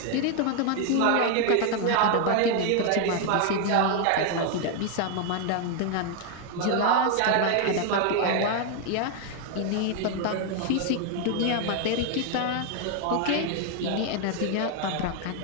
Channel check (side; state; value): both; different; correlation 0.01